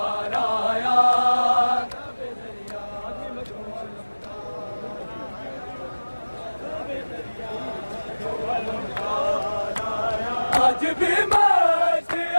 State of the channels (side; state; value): both; inverted; correlation -1.00